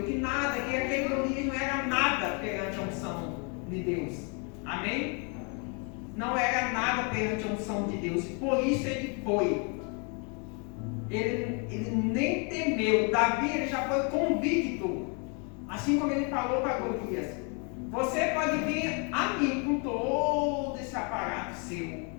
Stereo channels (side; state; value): right; quieter; 35.7 dB